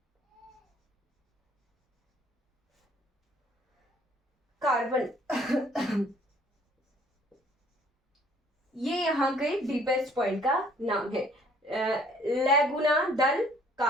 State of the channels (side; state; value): both; normal; correlation 0.59